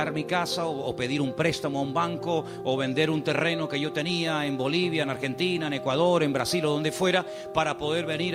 mi casa o pedir un préstamo a un banco o vender un terreno que yo tenía en Bolivia, en Argentina, en Ecuador, en Brasil o donde fuera, para poder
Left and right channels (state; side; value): identical; both; correlation 1.00